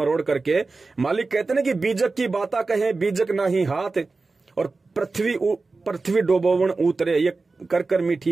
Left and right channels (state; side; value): quieter; left; 3.8 dB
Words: करके, मालिक कहते ना कि बीजक की बाता कहे बीजक नाही हाथ, और पृथ्वी डोबोवन उतरे, ये कर कर